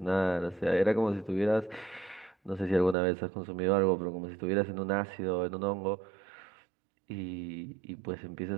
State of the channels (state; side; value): drops out; left; at 3.0 s